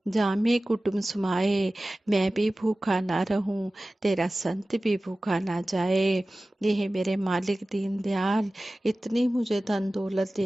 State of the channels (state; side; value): normal; both; correlation 0.97